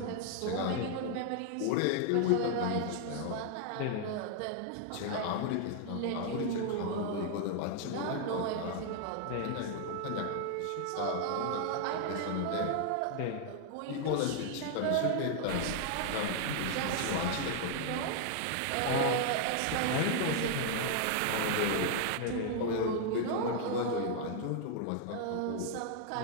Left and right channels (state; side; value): different; both; correlation 0.00